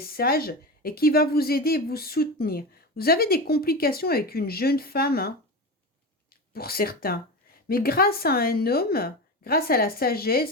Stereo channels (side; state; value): both; normal; correlation 0.23